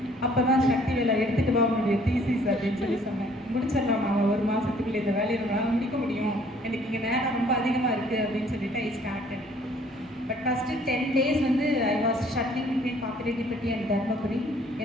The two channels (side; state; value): both; normal; correlation 0.59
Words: அப்போ தான் சக்தி வேலை எடுத்துகிட்டு வா உங்களுடைய தீசிஸ் அப்படின்னு சொல்லி சொன்னேன். முடிச்சிடலாம் நாங்கள் 1 மாதத்துக்குள்ளே இந்த வேலையை நம்மளால் முடிக்க முடியும், எனக்கு இங்கே நேரம் ரொம்ப அதிகமாக இருக்குது அப்படின்னு சொல்லிட்டு I started. But first 10 days வந்து I was shuttling between Pappireddipatti and Dharmapuri.